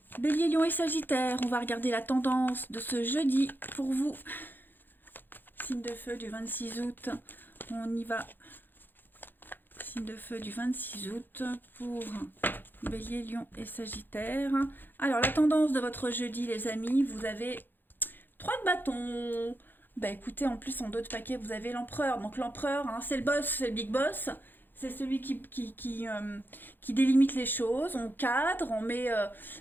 Bélier, Lion et Sagittaire, on va regarder la tendance de ce jeudi pour vous. Signe de feu du 26 août, on y va. Signe de feu du 26 août pour Bélier, Lion et Sagittaire. Alors la tendance de votre jeudi les amis, vous avez 3 de bâton. Bah écoutez, en plus en d'autres paquets, vous avez l'empereur. Donc l'empereur, c'est le boss, c'est le big boss. C'est celui qui délimite les choses. On cadre, on met...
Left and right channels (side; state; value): right; late; 0.093 ms